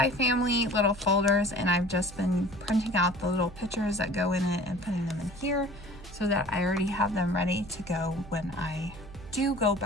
Family little folders, and I've just been printing out the little pictures that go in it and putting them in here so that I already have them ready to go when I do go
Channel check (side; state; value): right; noise; hum, 17 dB below the sound